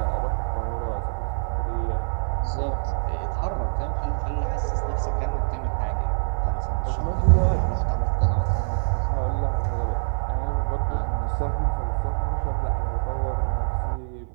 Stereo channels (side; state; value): left; silent; 56 dB below the other